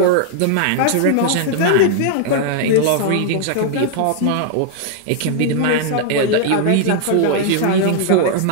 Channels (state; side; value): different; both; correlation -0.01